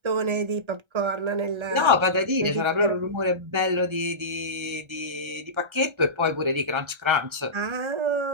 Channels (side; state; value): left; late; 1.3 ms